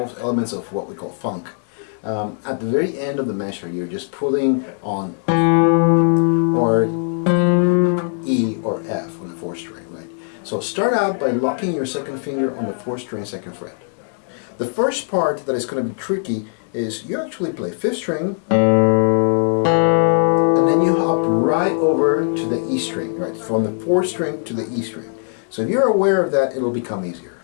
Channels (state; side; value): silent; right; 57 dB below the other